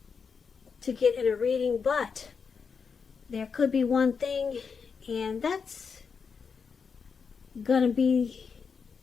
to get in a reading, but there could be one thing, and that's going to be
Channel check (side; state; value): right; quieter; 5.8 dB